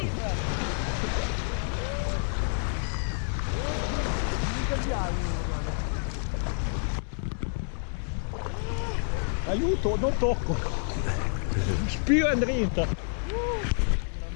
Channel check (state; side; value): silent; right; 59 dB below the other